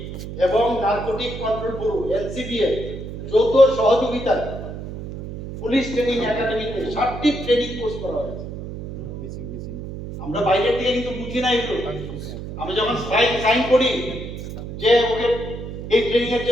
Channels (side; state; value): right; noise; hum, 9 dB below the sound